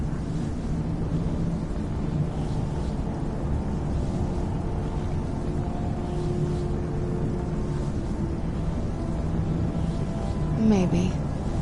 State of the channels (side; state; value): both; identical; correlation 1.00